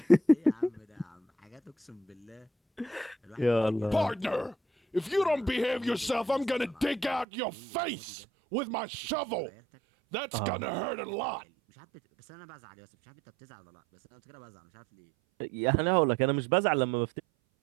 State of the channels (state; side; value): drops out; left; at 7.2 s